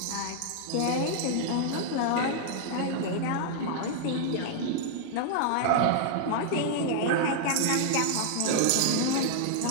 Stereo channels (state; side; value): different; both; correlation -0.01